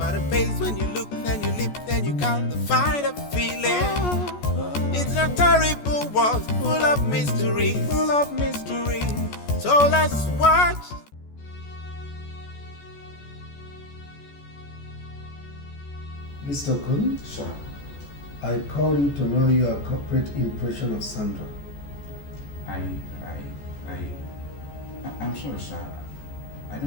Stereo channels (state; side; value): late; right; 14 ms